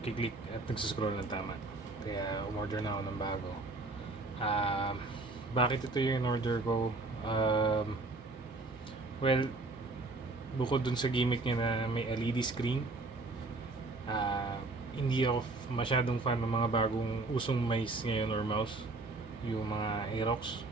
at nagsascroll ng tama. Kaya umorder na ako ng bago. Bakit ito yung order ko? Well, bukod dun sa gimmick niya na may LED screen, hindi ako masyadong fan ng mga bagong usong mice ngayon or mouse, yung mga Aerox.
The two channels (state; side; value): quieter; left; 3.2 dB